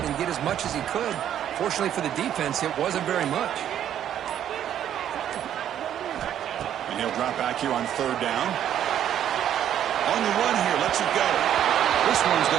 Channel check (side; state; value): left; quieter; 10.4 dB